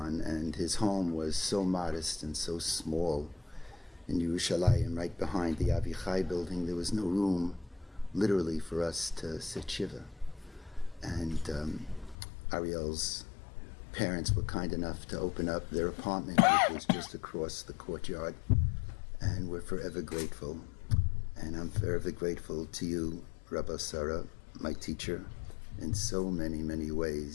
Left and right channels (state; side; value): drops out; right; at 12.2 s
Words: and his home was so modest and so small in Yerushalayim, right behind the Avichai building. There was no room, literally, for us to sit shiva. And Ariel's parents were kind enough to open up their apartment, which was just across the courtyard, and we're forever grateful. And I'm forever grateful to you, Rabbi Sarah, my teacher, in so many, many